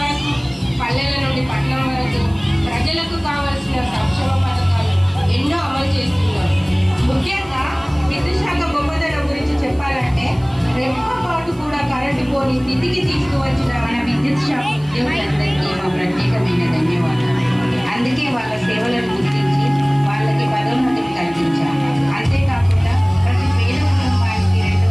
వరకు, పల్లెల నుండి పట్టణం వరకు ప్రజలకు కావలసిన సంక్షేమ పథకాలు ఎన్నో అమలు చేస్తున్నారు. ముఖ్యంగా విద్యుత్ శాఖ గొప్పతనం గురించి చెప్పాలంటే రెప్పపాటు కూడా కరెంటు పోని స్థితికి తీసుకువచ్చిన మన విద్యుత్ శాఖ ఉద్యోగులందరికీ మా ప్రత్యేకమైన ధన్యవాదాలు. అందుకే వాళ్ళ సేవలను గుర్తించి వాళ్ళకి పదోన్నతిని కల్పించాము. అంతేకాకుండా ప్రతి పేద కుటుంబానికి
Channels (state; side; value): noise; right; hiss, 28 dB below the sound